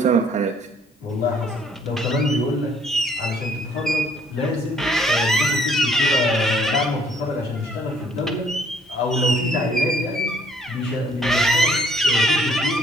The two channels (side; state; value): both; normal; correlation 0.62